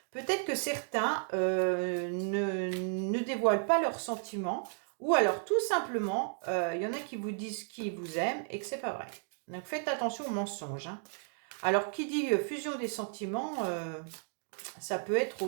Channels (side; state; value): left; silent; 55 dB below the other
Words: Peut-être que certains ne dévoilent pas leurs sentiments. Ou alors, tout simplement, il y en a qui vous disent qu'ils vous aiment et que c'est pas vrai. Donc, faites attention aux mensonges. Alors, qui dit fusion des sentiments, ça peut être